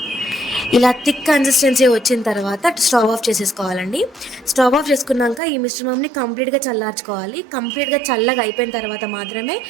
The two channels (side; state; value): left; drops out; at 5.4 s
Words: ఇలా థిక్ కన్సిస్టెన్సీ వచ్చిన తర్వాత స్టవ్ ఆఫ్ చేసేసుకోవాలండి. స్టవ్ ఆఫ్ చేసుకున్నాక ఈ మిశ్రమంని కంప్లీట్గా చల్లార్చుకోవాలి. కంప్లీట్గా చల్లగా అయిపోయిన తర్వాత మాత్రమే